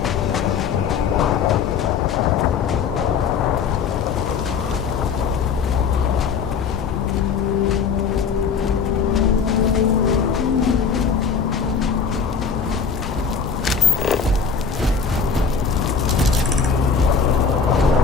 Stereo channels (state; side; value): quieter; right; 6.0 dB